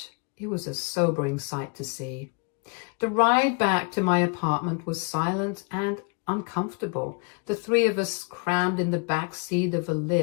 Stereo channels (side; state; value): right; quieter; 34.5 dB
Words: It was a sobering sight to see. The ride back to my apartment was silent and uncomfortable. The three of us crammed in the back seat of a